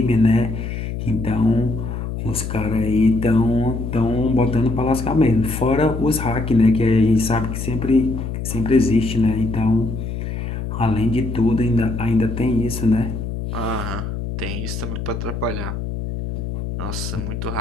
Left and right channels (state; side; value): noise; left; hum, 5 dB below the sound